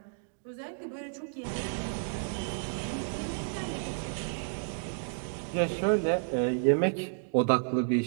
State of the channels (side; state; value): left; silent; digital silence